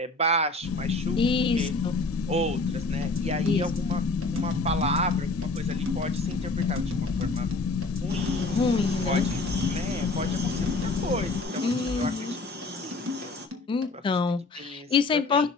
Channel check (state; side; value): quieter; right; 3.3 dB